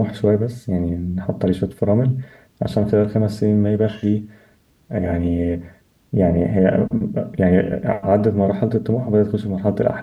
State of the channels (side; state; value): both; identical; correlation 1.00